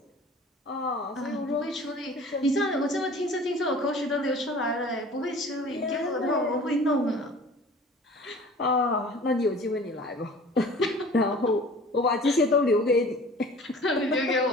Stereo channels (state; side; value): normal; both; correlation 0.45